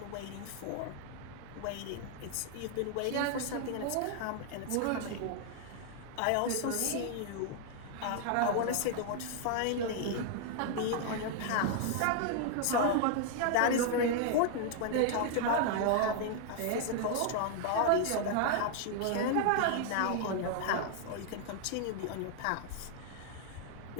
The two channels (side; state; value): both; different; correlation 0.00